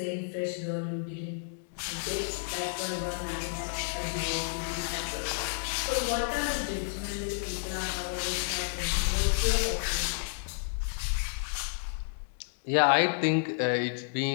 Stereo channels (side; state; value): right; silent; 57 dB below the other